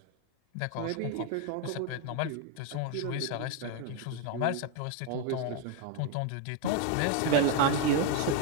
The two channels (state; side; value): different; both; correlation 0.01